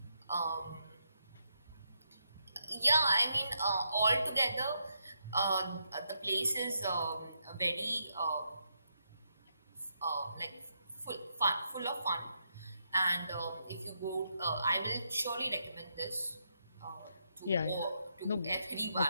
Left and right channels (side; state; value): both; inverted; correlation -0.80